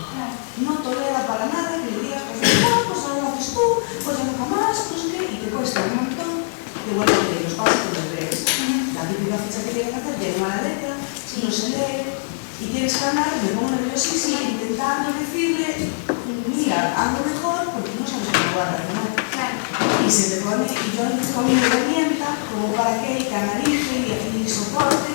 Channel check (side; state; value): right; silent; digital silence